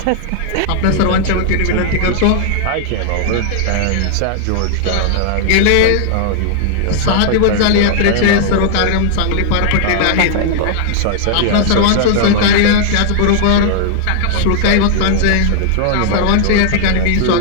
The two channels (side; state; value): both; different; correlation -0.01